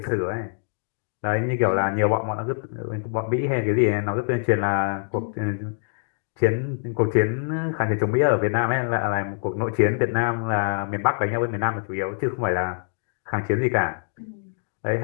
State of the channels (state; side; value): silent; right; digital silence